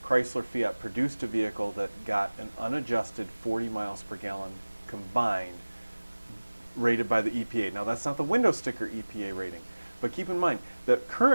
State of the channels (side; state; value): both; inverted; correlation -1.00